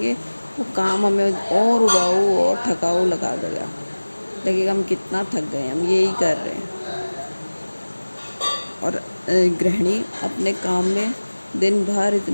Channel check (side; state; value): both; inverted; correlation -1.00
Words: वो काम हमें और उबाऊ और थकाऊ लगेगा, हम कितना थक गए, हम यही कर रहे हैं। और गृहिणी अपने काम में दिन भर